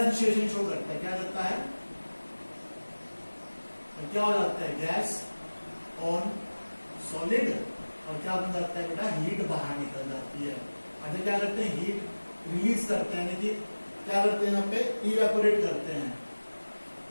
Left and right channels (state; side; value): inverted; both; correlation -1.00